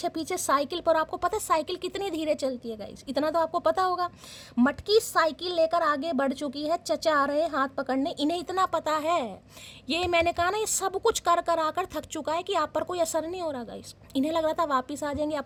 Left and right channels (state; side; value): identical; both; correlation 1.00